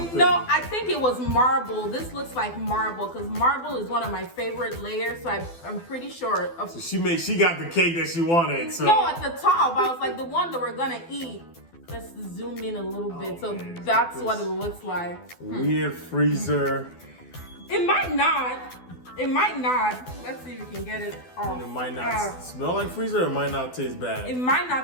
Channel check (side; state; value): right; late; 12 ms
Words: No, I think it was marble. This looks like marble because marble is one of my favorite layers. So I'm pretty sure. So she got the cake that she wanted. So no, at the top, I was like the one that we're gonna eat. Let's zoom in a little bit. So that's what it looks like. Weird freezer. It might not. It might not. Let's see if we can get it off. And it might not smell like freezer, or it might not taste bad. It might not